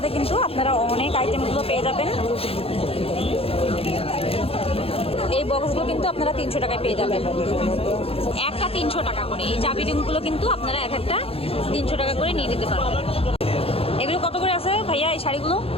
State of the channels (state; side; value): late; right; 0.28 ms